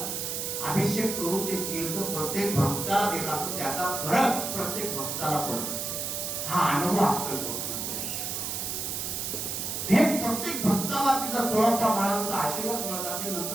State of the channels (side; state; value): right; noise; hiss, 3 dB below the sound